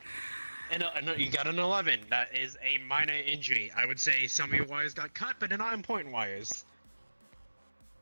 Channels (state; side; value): inverted; both; correlation -1.00